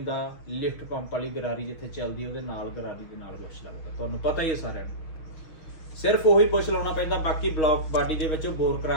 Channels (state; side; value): late; right; 6.3 ms